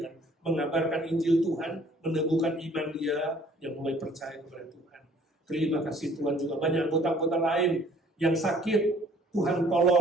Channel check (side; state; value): both; normal; correlation 0.57